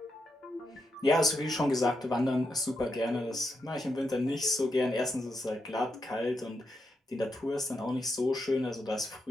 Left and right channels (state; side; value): normal; both; correlation 0.83